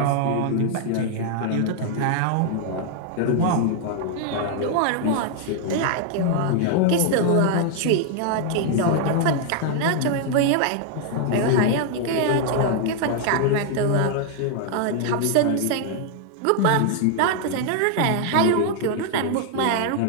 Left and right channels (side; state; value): both; different; correlation 0.00